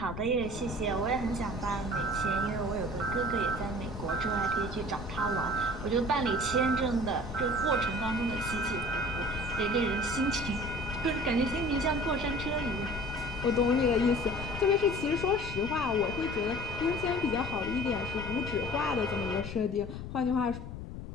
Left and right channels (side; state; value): left; noise; rumble, 9 dB below the sound